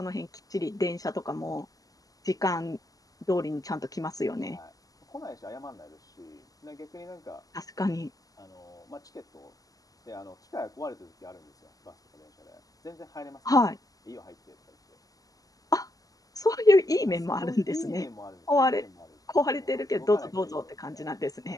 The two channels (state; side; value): late; right; 0.17 ms